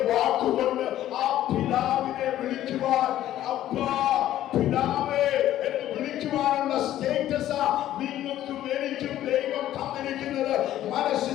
വാക്കുകൊണ്ട് ആ പിതാവിനെ വിളിക്കുവാൻ, അബ്ബാ പിതാവേ എന്ന് വിളിക്കുവാനുള്ള സ്റ്റേറ്റസാ നിങ്ങൾക്കും എനിക്കും ദൈവം തന്നിരിക്കുന്നത്.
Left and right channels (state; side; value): quieter; right; 12.9 dB